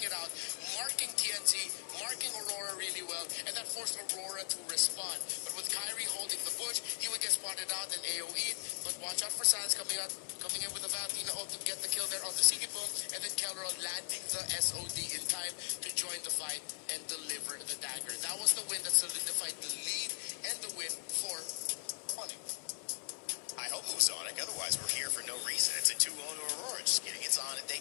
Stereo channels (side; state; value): right; silent; 52 dB below the other